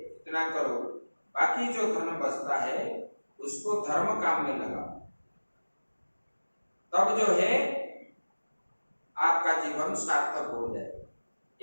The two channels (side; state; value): both; inverted; correlation -1.00